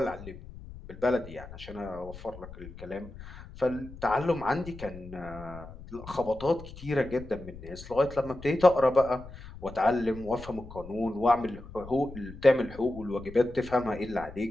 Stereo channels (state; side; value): noise; left; rumble, 15 dB below the sound